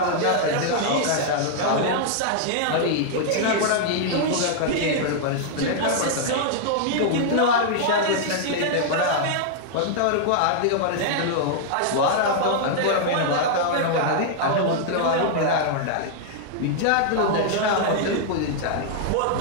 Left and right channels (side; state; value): both; different; correlation -0.01